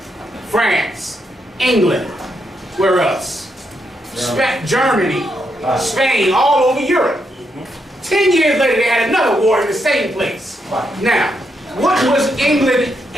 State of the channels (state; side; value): normal; both; correlation 0.80